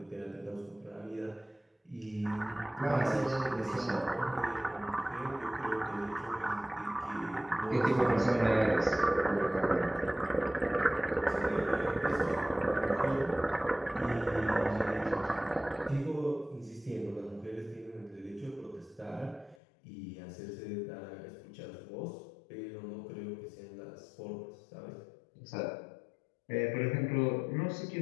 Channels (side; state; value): right; drops out; at 19.6 s